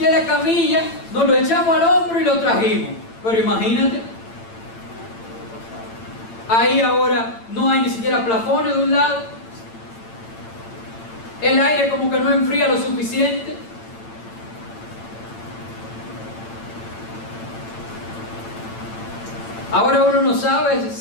la camilla, nos lo echamos al hombro y lo trajimos. Pero imagínate, ahí ahora no hay ni siquiera plafones de un lado, el aire como que no enfría lo suficiente. Ahora uno no sabe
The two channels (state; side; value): late; right; 8.9 ms